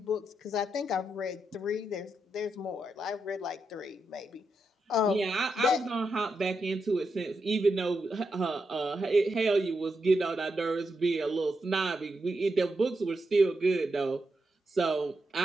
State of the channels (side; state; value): both; normal; correlation 0.84